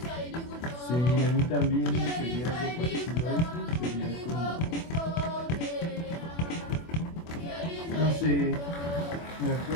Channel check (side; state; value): right; late; 24 ms